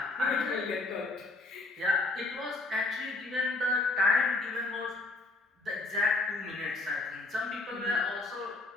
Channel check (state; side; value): quieter; right; 3.1 dB